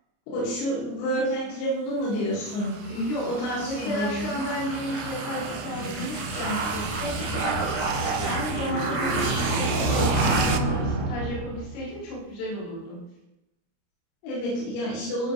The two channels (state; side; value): late; right; 29 ms